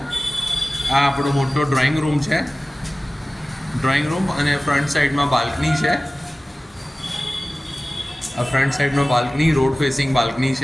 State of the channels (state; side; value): normal; both; correlation 0.97